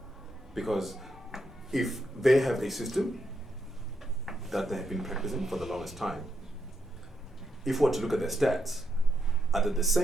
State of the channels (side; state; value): both; normal; correlation 0.80